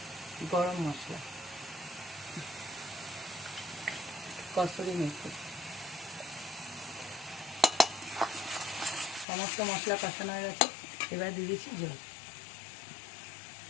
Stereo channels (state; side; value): drops out; right; at 9.2 s